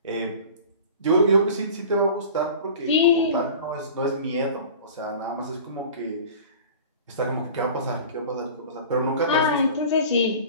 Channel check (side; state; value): both; inverted; correlation -0.40